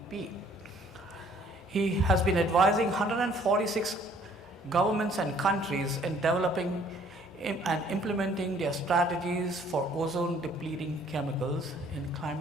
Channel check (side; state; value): both; normal; correlation 0.59